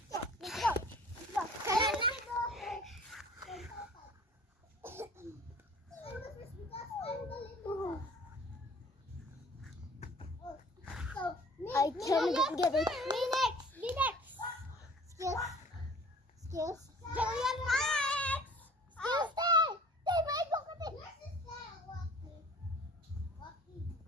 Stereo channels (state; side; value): normal; both; correlation 0.48